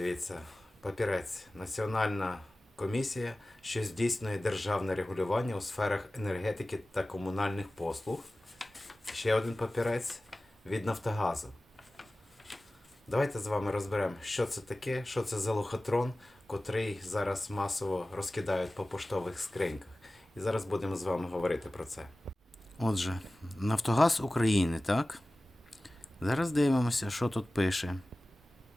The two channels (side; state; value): both; normal; correlation 0.97